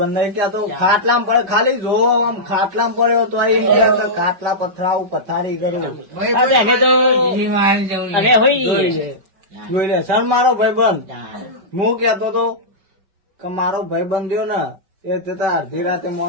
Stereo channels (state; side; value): late; left; 5.2 ms